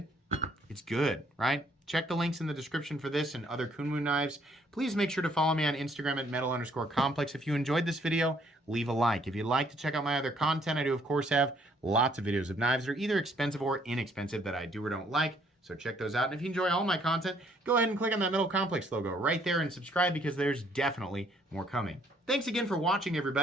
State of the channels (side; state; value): both; normal; correlation 0.66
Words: it's good, right? Check the links in the description for this and other Kunwu knives. Please make sure to follow me on Instagram at metal_complex. If you enjoyed this video, leave a like. If you'd like to check out my other content, I do, of course, have lots of videos of knives that are either expensive or inexpensive that I do or don't like. So check those out. And if you enjoy all my content, go ahead and click on that Metal Complex logo right there and subscribe because there's definitely more coming. Thanks again for watching,